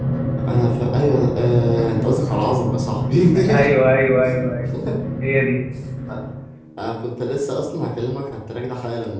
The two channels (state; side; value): identical; both; correlation 1.00